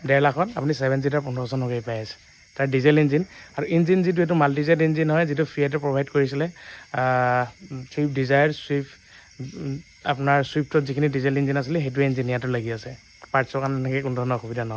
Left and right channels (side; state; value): both; identical; correlation 1.00